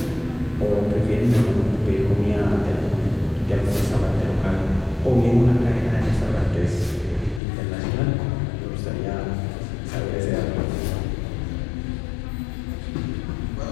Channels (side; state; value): right; drops out; at 7.4 s